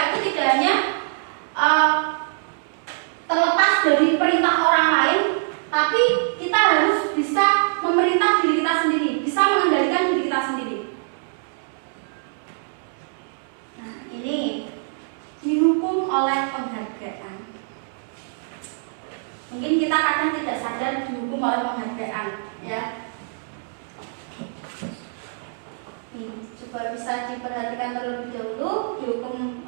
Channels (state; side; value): silent; left; digital silence